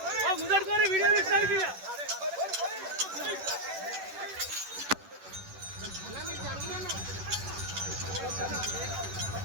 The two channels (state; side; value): late; left; 11 ms